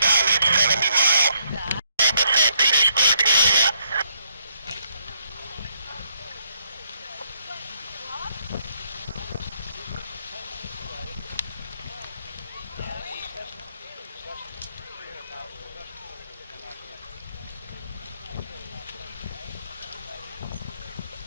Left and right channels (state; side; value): inverted; both; correlation -0.73